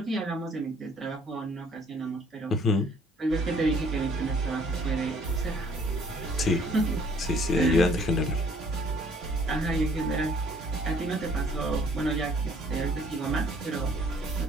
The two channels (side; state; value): both; normal; correlation 0.60